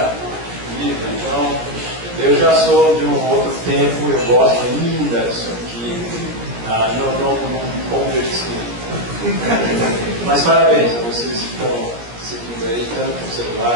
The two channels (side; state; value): left; late; 17 ms